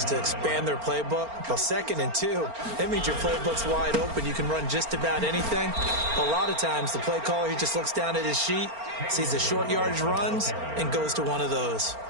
to expand their playbook. Well, 2nd and 2, that means your playbook's wide open. You can run just about anything. A lot of times, the play caller, he just looks down at his sheet, sees the short yardage runs, and goes to one of those.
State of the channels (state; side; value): late; left; 4.4 ms